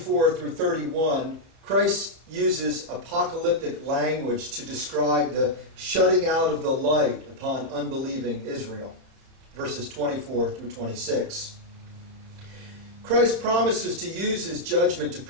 through 31, Christ uses apocalyptic language to describe the shutting out of the light upon unbelieving Israel. Verses 24 through 26. Christ promises to use his judgment to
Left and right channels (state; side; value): late; left; 31 ms